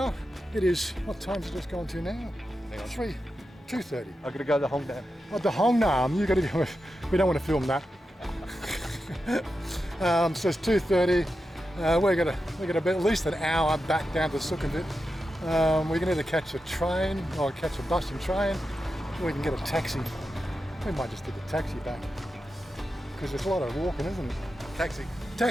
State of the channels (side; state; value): both; normal; correlation 0.90